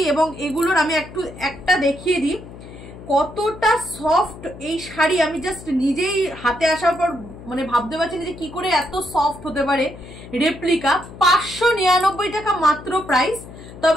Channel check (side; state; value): left; noise; hum, 16 dB below the sound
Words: এবং এগুলোর আমি একটা দেখিয়ে দিই কতটা সফট এই শাড়ি। আমি জাস্ট নিজেই হাতে আসার পর মানে ভাবতে পারছি না যে কি করে এত সফট হতে পারে। রেপ্লিকা 599 টাকা মাত্র প্রাইস।